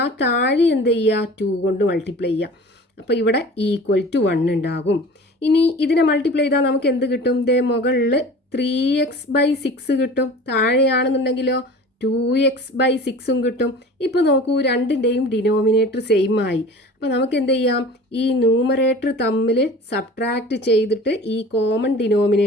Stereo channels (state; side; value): normal; both; correlation 0.41